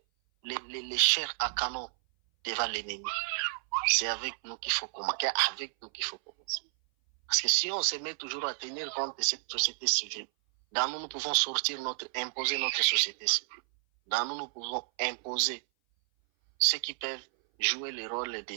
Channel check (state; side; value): silent; left; 57 dB below the other